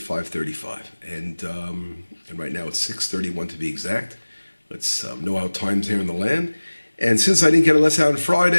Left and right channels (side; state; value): both; inverted; correlation -1.00